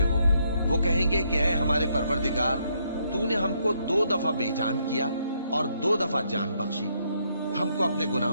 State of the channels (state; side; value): inverted; both; correlation -0.74